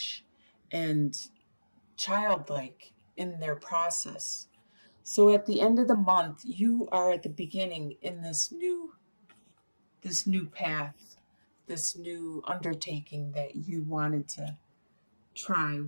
and childlike in their process. So at the end of the month, you are at the beginning in this new path, this new undertaking that you wanted to try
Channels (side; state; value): both; inverted; correlation -1.00